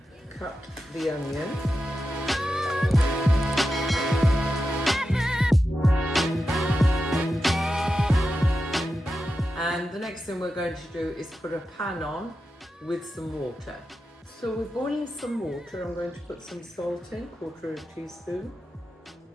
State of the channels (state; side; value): normal; both; correlation 0.90